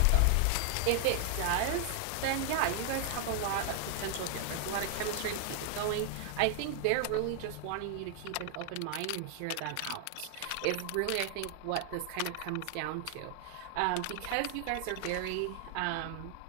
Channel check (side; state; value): both; different; correlation 0.00